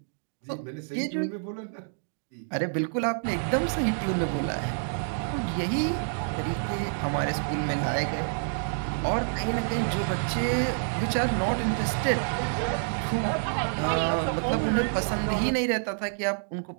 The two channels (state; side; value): silent; left; digital silence